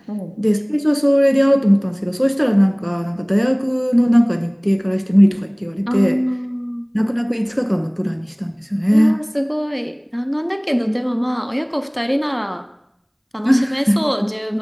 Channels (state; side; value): identical; both; correlation 1.00